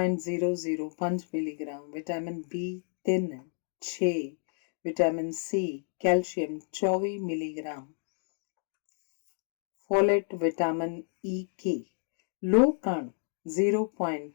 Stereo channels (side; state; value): right; silent; digital silence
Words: milligram, vitamin B3 6, vitamin C, calcium 24 milligram, folate, vitamin E, ਲੋਹ ਕਣ